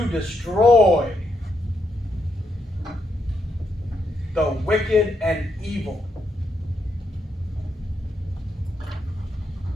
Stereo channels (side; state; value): both; normal; correlation 0.79